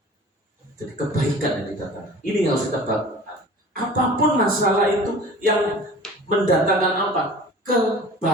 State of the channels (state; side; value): normal; both; correlation 0.42